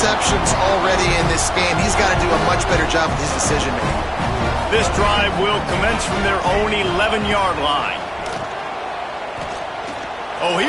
already in this game. He's got to do a much better job with his decision-making. This drive will commence from their own 11-yard line. Oh,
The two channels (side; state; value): both; identical; correlation 1.00